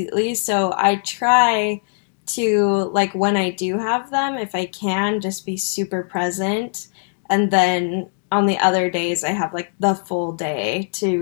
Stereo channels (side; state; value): right; silent; digital silence